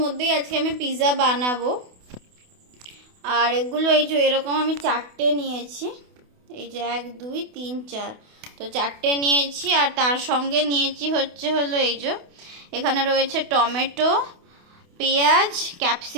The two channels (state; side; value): late; left; 28 ms